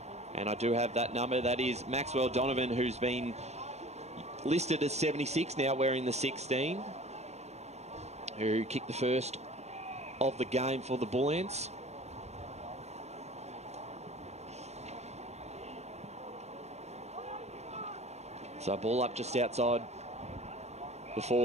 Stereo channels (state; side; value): late; left; 0.32 ms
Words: And I do have that number. That is Maxwell Donovan, who's been listed as 76, now wearing the 16. Who kicked the first of the game for the Bull Ants. So ball up just outside the